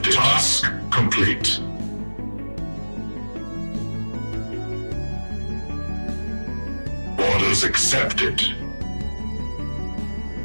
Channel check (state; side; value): inverted; both; correlation -1.00